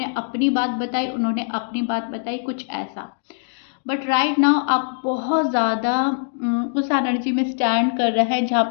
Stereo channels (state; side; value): silent; right; digital silence